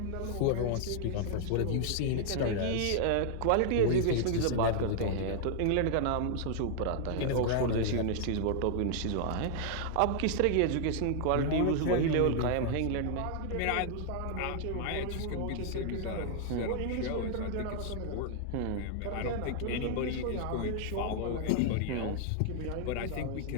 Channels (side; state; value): both; different; correlation 0.00